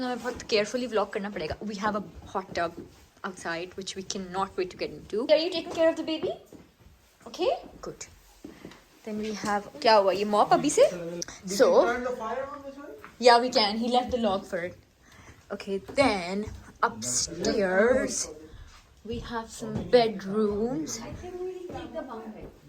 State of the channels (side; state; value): both; identical; correlation 1.00